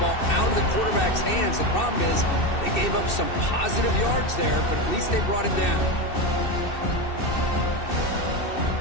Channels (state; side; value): late; right; 2.6 ms